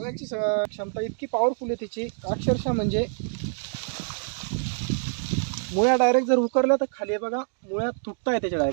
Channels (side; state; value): left; silent; digital silence